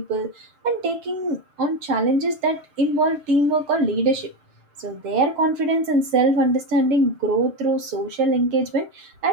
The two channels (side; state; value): left; late; 6.7 ms